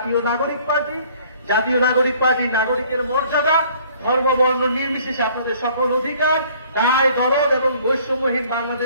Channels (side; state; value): both; inverted; correlation -0.57